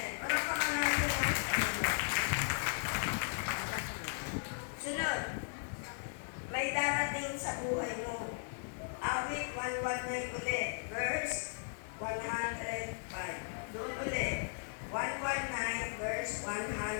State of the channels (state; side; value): silent; right; digital silence